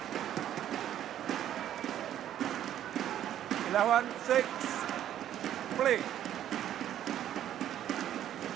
Eleven, 6, play.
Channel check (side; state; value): left; quieter; 11.2 dB